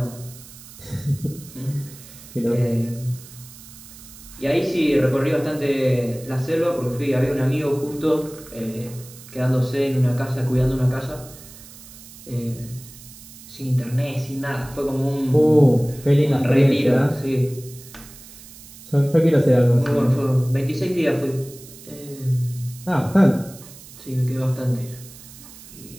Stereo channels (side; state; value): right; noise; hiss, 18 dB below the sound